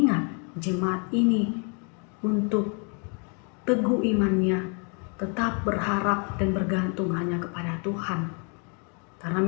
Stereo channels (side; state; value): right; quieter; 37.3 dB